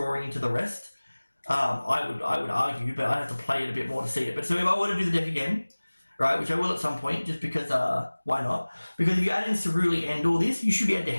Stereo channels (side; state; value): both; inverted; correlation -1.00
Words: into the rest. I would argue, but I'd have to play it a bit more to see it. But so if I were to do the deck again, right, which I will at some point, just because, why not? Because if you add in Ceruli and all this, you should be able to